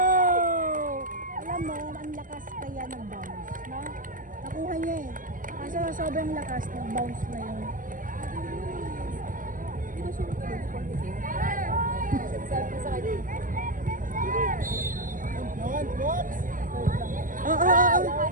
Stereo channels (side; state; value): left; late; 0.39 ms